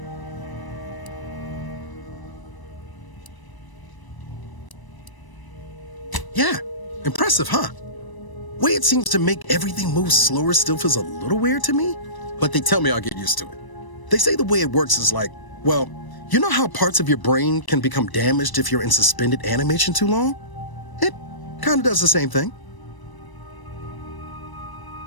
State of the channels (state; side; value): late; right; 1.0 ms